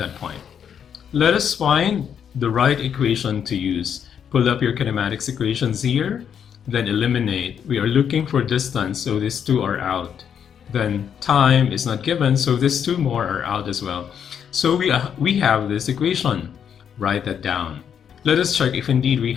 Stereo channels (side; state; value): right; quieter; 8.2 dB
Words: point. Let us find the right equation to use. Pull up your kinematics equations here, then eliminate. We are looking for distance, so these two are out. Then time is not given, so these two more are out as well. So we have this equation. Write that down. Let us check if indeed we